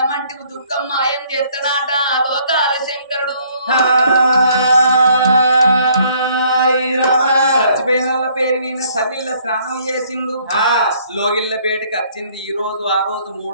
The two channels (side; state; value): both; inverted; correlation -0.62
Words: మంటి దుఃఖం మాయం చేస్తాడాట లోకాల శంకరుడు. చచ్చిపోయిన వాళ్ళ పేరు మీద సల్లిళ్ళ స్నానం చేసిండు, లోగిళ్ళ బేటికి వచ్చింది. ఈ రోజు ఆ రోజు